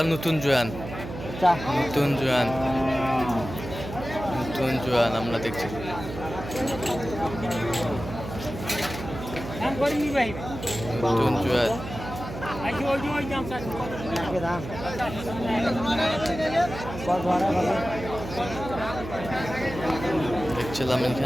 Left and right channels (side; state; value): right; noise; hum, 9 dB below the sound